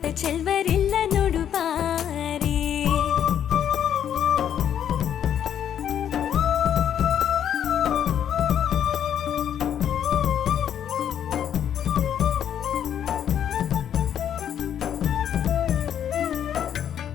ಚೆಲ್ವರಿಲ್ಲ ನೋಡು ಬಾರಿ.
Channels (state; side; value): quieter; right; 9.5 dB